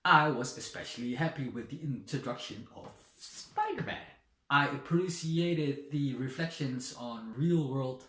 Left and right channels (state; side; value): identical; both; correlation 1.00